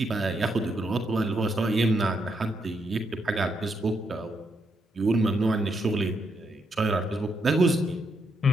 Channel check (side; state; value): both; normal; correlation 0.78